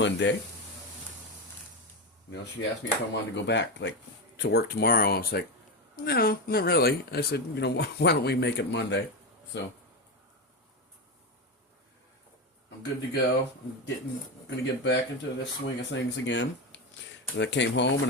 She asked me if I wanted to go back, to work tomorrow. I was like, no, not really. I said, why don't we make it Monday? So I'm good to go. Gonna get back into the swing of things again. And I came home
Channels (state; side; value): normal; both; correlation 0.15